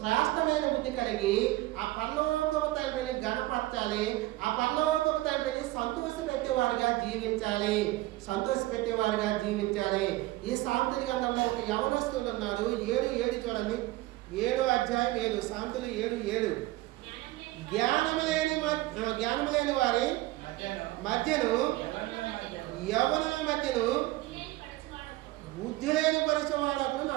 బుద్ధి కలిగి ఆ పరలోకపు తండ్రిని గణపరచాలి. ఆ పరలోకపు తండ్రిని సంతోషపెట్టేవారుగా జీవించాలి. ఈ సామెతల గ్రంథంలో ఒక యవనస్తుడు ఉన్నారు. 7:7 చూడండి. 7వ అధ్యాయం 7. సామెతలు 7:7. జ్ఞానము లేని వారి మధ్యను, యవనుల మధ్యను బుద్ధి లేని పరిచయవాడు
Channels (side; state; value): left; quieter; 18.2 dB